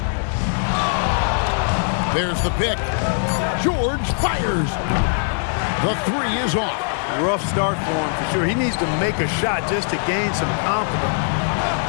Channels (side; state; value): right; silent; digital silence